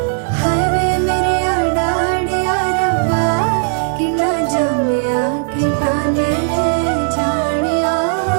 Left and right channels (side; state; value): left; silent; digital silence